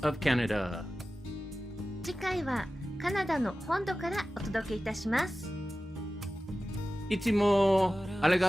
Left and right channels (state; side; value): normal; both; correlation 0.95